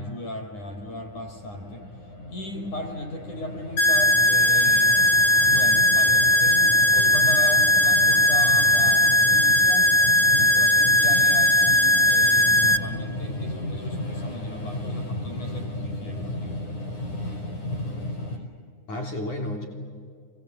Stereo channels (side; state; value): right; late; 9.8 ms